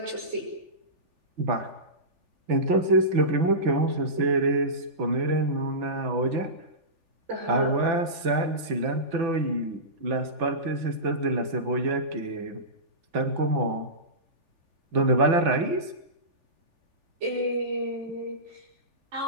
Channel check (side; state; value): left; late; 3.4 ms